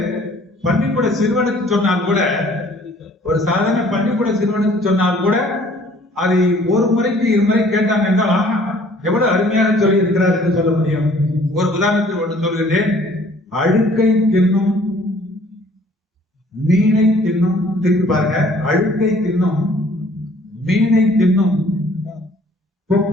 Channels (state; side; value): normal; both; correlation 0.56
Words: பள்ளிக்கூட சிறுவனுக்கு சொன்னால் கூட, ஒரு சாதாரண பள்ளிக்கூட சிறுவனுக்கு சொன்னால் கூட அதை ஒரு முறைக்கு 2 முறை கேட்டாங்க என்றால் ஆஹா எவ்வளவு அருமையாக சொல்லி இருக்கிறார் என்று சொல்ல முடியும். ஒரு உதாரணத்தில் ஒன்று சொல்கிறேன். அழுக்கை தின்னும் மீனை தின்னும், திருப்பி பாருங்க, அழுக்கை தின்னும் மீனை தின்னும்